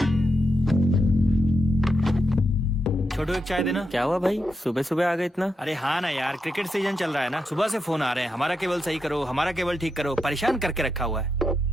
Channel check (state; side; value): normal; both; correlation 0.85